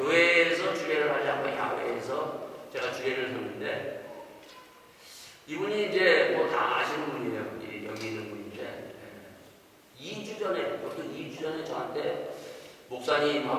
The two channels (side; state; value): both; identical; correlation 1.00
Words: 주례를 하지 않고 야외에서 제가 주례를 섰는데 이분이 이제 뭐 다 아시는 분이에요. 여기 있는 분인데 2주 전에 어떤 2주 전에 저한테